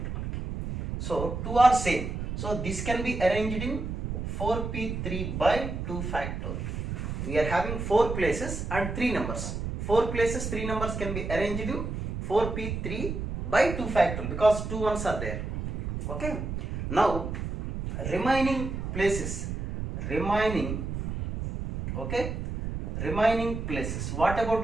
మనకి. So 2 are same. So this can be arranged in 4p3 by 2 factorial. We are having 4 places and 3 numbers. 4 places, 3 numbers can be arranged in 4p3 by 2 factorial because 2 ones are there. Okay. Now remaining places. Remaining places. What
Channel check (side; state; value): right; noise; rumble, 5 dB below the sound